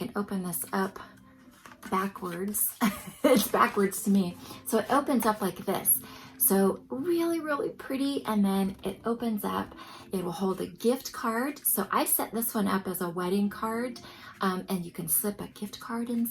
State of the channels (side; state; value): both; identical; correlation 1.00